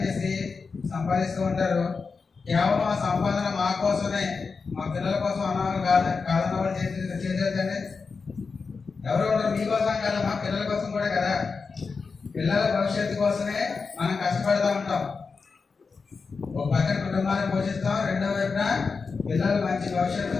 సంపాదిస్తూ ఉంటారు. కేవలం ఆ సంపాదన మా కోసమే, మా పిల్లల కోసం అన్నవాళ్ళు కాదన్న వాళ్ళు చేసేదండి. ఎవరు ఉంటారు మీకోసం కదా, మా పిల్లల కోసం కూడా కదా. పిల్లల భవిష్యత్తు కోసమే మనం కష్టపడుతూ ఉంటాం. ఒక పక్కన కుటుంబాన్ని పోషిస్తాం, రెండో వైపున పిల్లలు మంచి భవిష్యత్తు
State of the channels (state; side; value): quieter; right; 4.8 dB